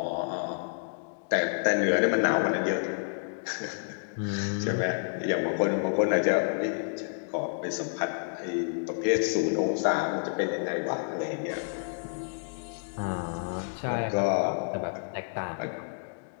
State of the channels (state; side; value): silent; right; digital silence